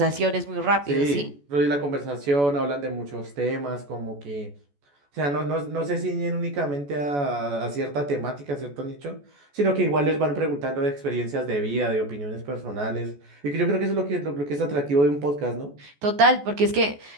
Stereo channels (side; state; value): left; late; 14 ms